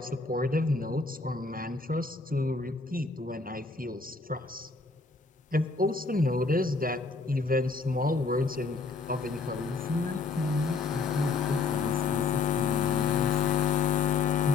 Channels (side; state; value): right; quieter; 4.2 dB